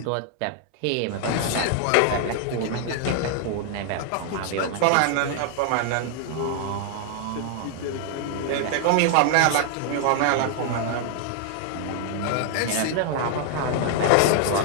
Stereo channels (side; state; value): both; different; correlation 0.00